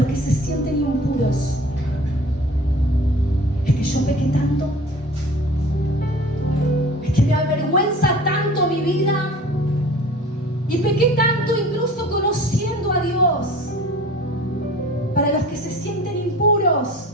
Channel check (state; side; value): normal; both; correlation 0.43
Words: que se sienten impuros, es que yo pequé tanto, es que me avergüenza tanto mi vida y pequé tanto incluso conociendo a Dios. Para los que se sienten impuros,